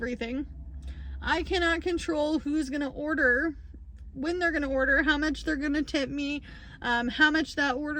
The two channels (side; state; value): both; identical; correlation 1.00